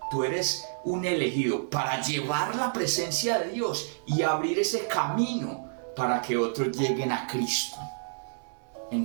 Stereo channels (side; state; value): left; silent; digital silence